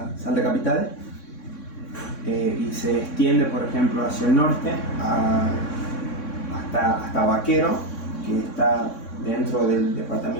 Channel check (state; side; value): late; right; 3.6 ms